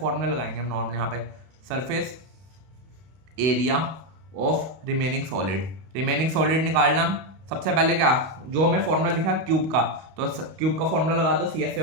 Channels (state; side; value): late; left; 31 ms